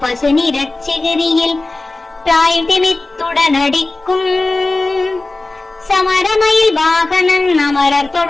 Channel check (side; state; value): right; quieter; 3.1 dB